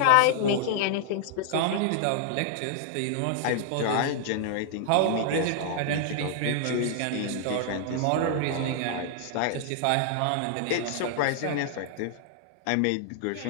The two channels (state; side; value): different; both; correlation -0.01